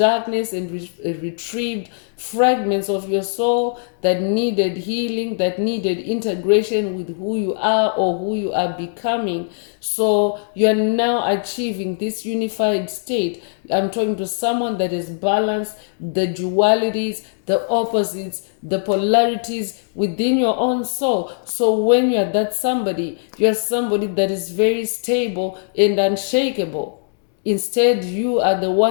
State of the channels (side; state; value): right; silent; digital silence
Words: and retrieved fragments of your soul that needed healing, that needed integration with who you are or who you are becoming. So you're now achieving this unified state. I'm talking to someone that is balanced, the dualities, the opposites, the polarities within your own soul. So when you're that somebody, you're somebody that is very stable and unshakable. Instead, you are the